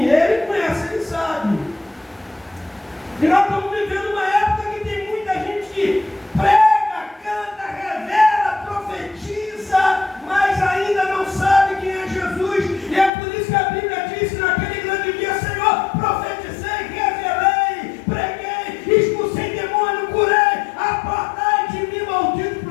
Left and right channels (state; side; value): drops out; right; at 13.1 s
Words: Ele conhece, ele sabe. E nós estamos vivendo uma época que tem muita gente que prega, canta, revela, profetiza, mas ainda não sabe quem é Jesus. E é por isso que a Bíblia diz que naquele grande dia: Senhor, profetizei, revelei, preguei, expulsei demônio, curei, apartai de mim, maldito,